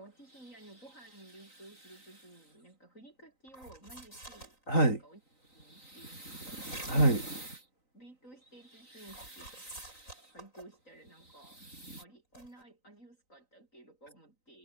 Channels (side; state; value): right; late; 3.9 ms